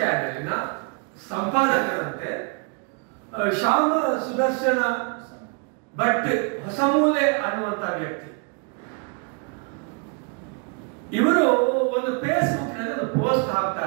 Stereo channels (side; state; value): left; quieter; 36.2 dB